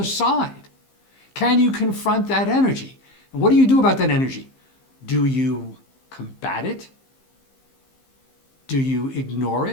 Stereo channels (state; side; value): late; right; 15 ms